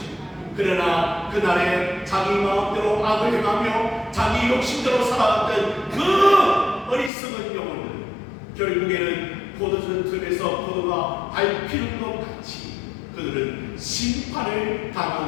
그러나 그날에 자기 마음대로 악을 행하며 자기 욕심대로 살아갔던 그 어리석은 영혼들 결국에는 포도주 틈에서 포도가 밟히는 것 같이 그들은 심판을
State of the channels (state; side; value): drops out; right; at 7.1 s